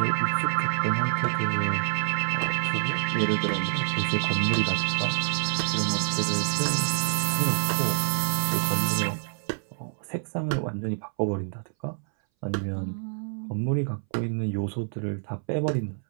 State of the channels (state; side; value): silent; left; 60 dB below the other